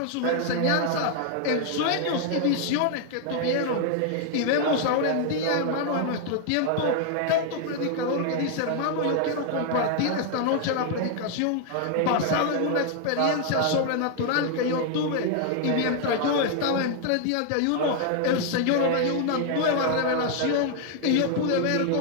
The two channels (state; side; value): different; both; correlation 0.00